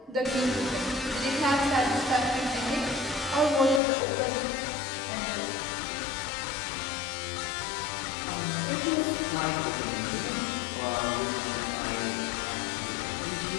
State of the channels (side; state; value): right; drops out; at 3.8 s